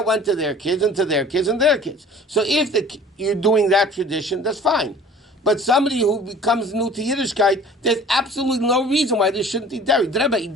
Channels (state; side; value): normal; both; correlation 0.46